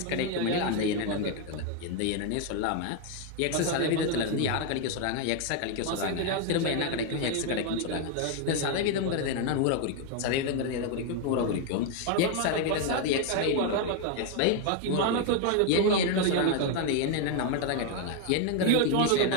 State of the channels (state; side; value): different; both; correlation 0.01